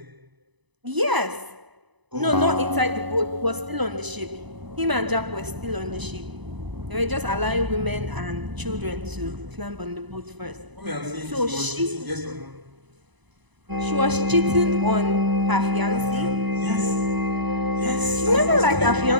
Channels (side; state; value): left; late; 1.0 ms